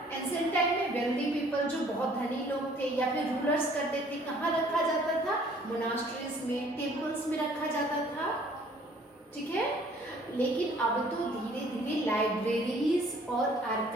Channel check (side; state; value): both; normal; correlation 0.57